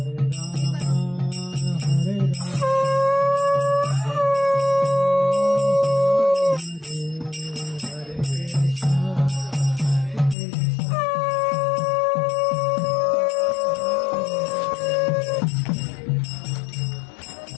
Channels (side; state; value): right; drops out; at 10.4 s